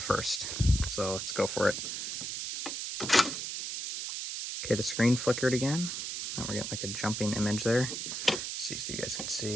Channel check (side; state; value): right; noise; hiss, 4 dB below the sound